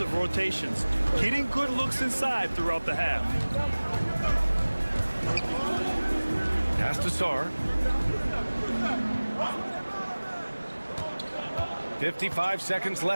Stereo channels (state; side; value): inverted; both; correlation -1.00